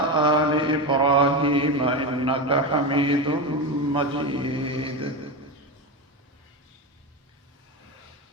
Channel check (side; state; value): both; normal; correlation 0.17